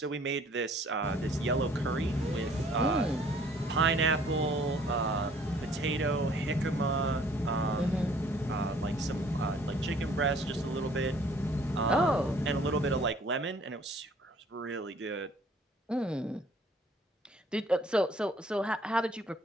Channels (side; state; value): both; normal; correlation 0.57